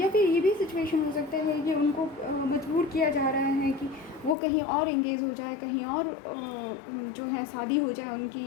फिर ये भी सिचुएशन हो सकता है कि उनको मजबूर किया जा रहा है कि वो कहीं और एंगेज हो जाए, कहीं और जो है शादी हो जाए उनकी,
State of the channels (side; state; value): right; drops out; at 4.4 s